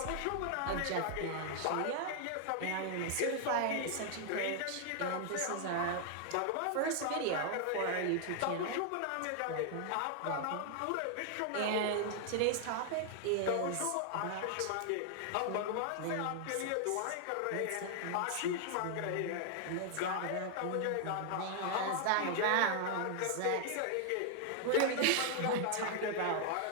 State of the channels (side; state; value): both; different; correlation 0.00